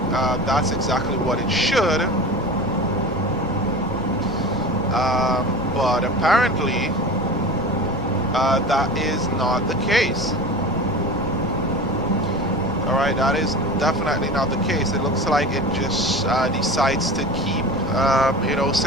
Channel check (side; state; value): both; normal; correlation 0.33